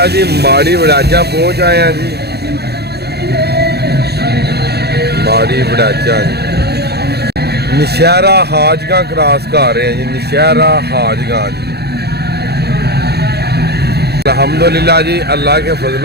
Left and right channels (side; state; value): left; late; 0.47 ms